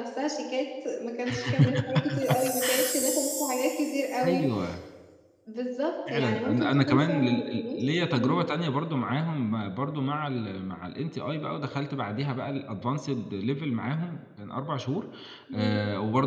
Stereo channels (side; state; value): both; identical; correlation 1.00